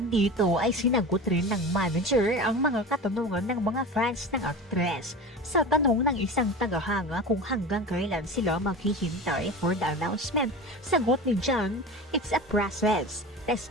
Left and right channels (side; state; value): both; normal; correlation 0.31